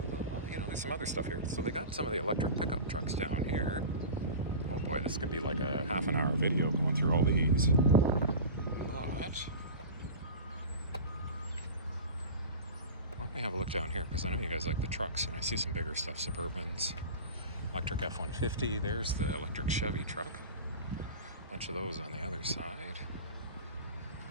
you know, there's some other stuff here. So they got some of the electric pickup trucks down here. Oh boy, this could be like a half an hour video going through all these. But why don't we have a look down here? Because I know you guys like the trucks, and I see some bigger stuff. Suburbans, electric F-150. There's the electric Chevy truck. A bunch of those on the other side.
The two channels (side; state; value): both; inverted; correlation -0.32